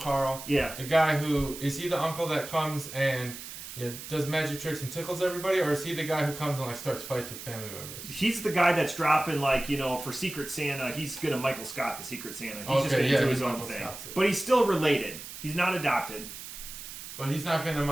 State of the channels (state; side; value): noise; right; hiss, 11 dB below the sound